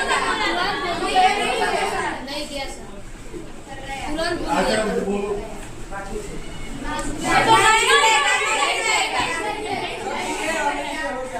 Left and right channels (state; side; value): identical; both; correlation 1.00